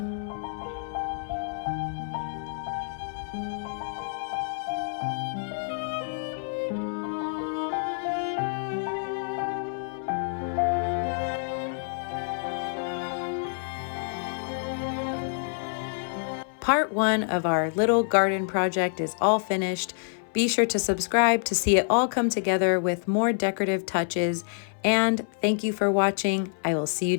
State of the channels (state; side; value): silent; right; 60 dB below the other